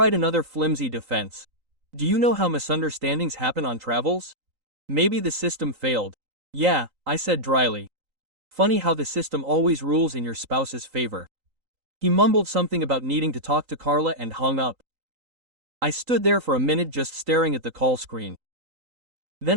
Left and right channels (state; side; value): late; left; 3.9 ms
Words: another flimsy defense. Do you know how misunderstandings happen on travels? Maybe the system failed. Yeah, I said dryly. Funny how the system always rules in your spouse's favor. He mumbled something about needing to talk to Carla and hung up. I stood there for a minute just staring at the call screen. Then